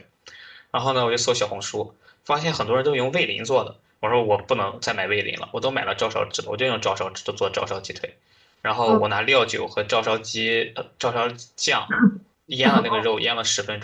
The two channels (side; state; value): both; identical; correlation 1.00